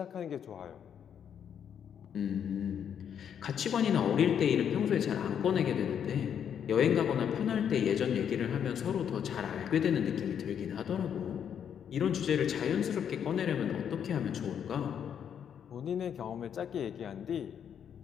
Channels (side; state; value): right; quieter; 8.4 dB